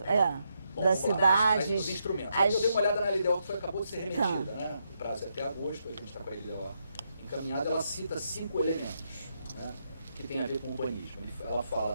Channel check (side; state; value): both; inverted; correlation -0.80